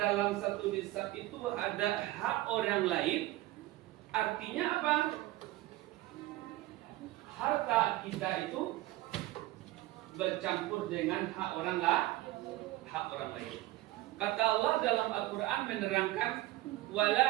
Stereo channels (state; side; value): quieter; left; 17.6 dB